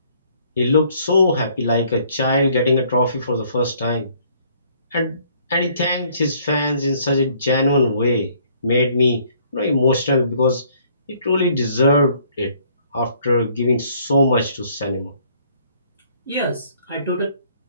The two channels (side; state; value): both; inverted; correlation -0.62